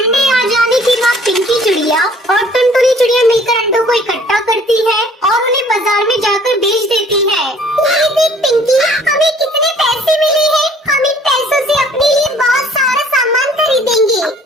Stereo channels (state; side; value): normal; both; correlation 0.56